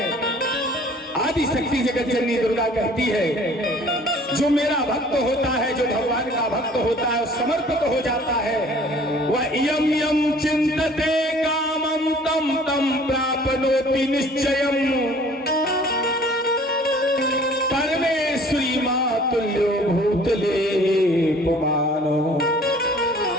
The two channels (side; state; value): both; normal; correlation 0.52